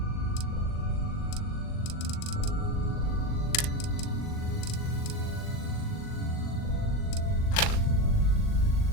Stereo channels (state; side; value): late; right; 39 ms